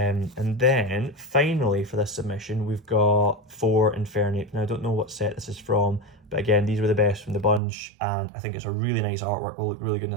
then finally for this submission, we've got 4 Infernape. Now I don't know what set this is from, but again, these were the best from the bunch, and I think it's a really nice artwork, will look really good in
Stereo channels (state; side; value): drops out; left; at 7.6 s